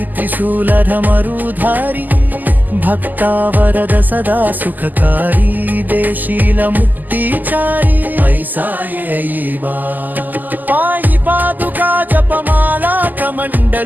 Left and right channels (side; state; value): left; late; 0.084 ms